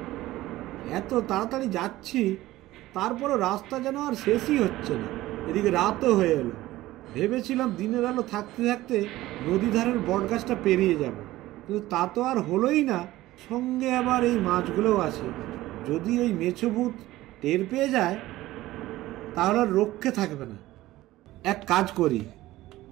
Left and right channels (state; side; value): quieter; left; 16.6 dB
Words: এত তাড়াতাড়ি যাচ্ছি, তারপরও রাস্তা যেন আর শেষই হচ্ছে না। এদিকে রাতও হয়ে এলো। ভেবেছিলাম দিনের আলো থাকতে থাকতে নদী ধারের বটগাছটা পেরিয়ে যাব, কিন্তু তা তো আর হলোই না। সঙ্গে আবার এই মাছগুলোও আছে। যদি ওই মেছো ভূত টের পেয়ে যায় তাহলে আর রক্ষে থাকবে না। এক কাজ করি,